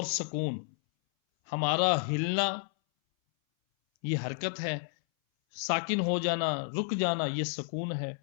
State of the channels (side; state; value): right; silent; 57 dB below the other